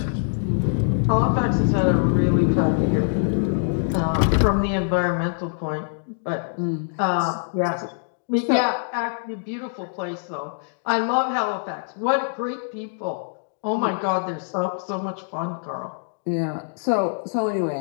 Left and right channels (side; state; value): right; silent; digital silence